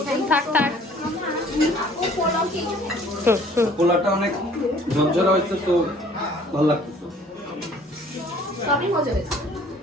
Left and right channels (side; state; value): both; normal; correlation 0.55